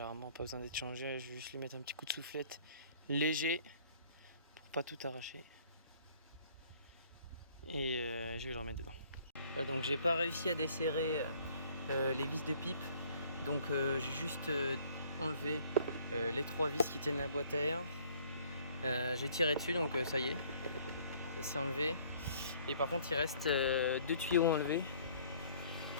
pas besoin d'être changé. Je vais juste lui mettre un petit coup de soufflette léger pour pas tout arracher. Et je vais le remettre dedans. Voilà, donc j'ai pas réussi à desserrer les vis de pipe, donc j'ai juste enlevé les 3 vis qui tiennent la boîte à air. J'ai tiré dessus, donc ça y est, ça s'est enlevé. Et par contre il reste 2 tuyaux enlevés,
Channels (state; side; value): inverted; both; correlation -0.58